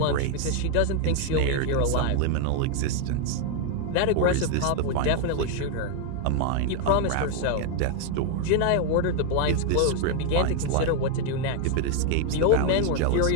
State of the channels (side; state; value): both; different; correlation 0.00